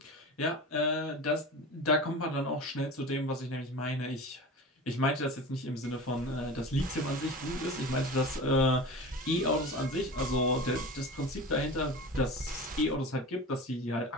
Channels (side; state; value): both; normal; correlation 0.33